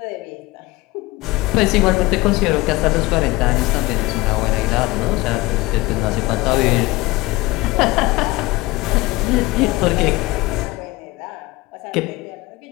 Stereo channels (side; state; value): right; quieter; 20.3 dB